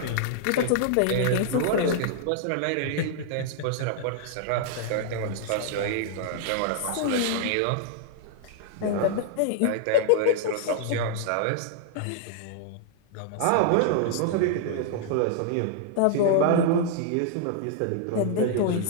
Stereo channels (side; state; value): both; different; correlation -0.01